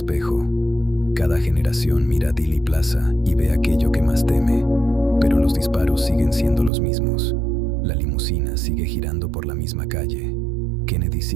Cada generación mira a Dealey Plaza y ve aquello que más teme. Pero los disparos siguen siendo los mismos. La limusina sigue girando por la misma calle. Kennedy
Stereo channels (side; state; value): left; drops out; at 6.7 s